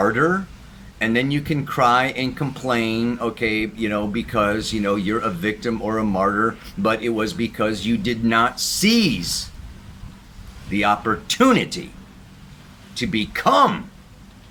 And then you can cry and complain, okay, because, you're a victim or a martyr, but it was because you did not seize the opportunity to become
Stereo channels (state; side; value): identical; both; correlation 1.00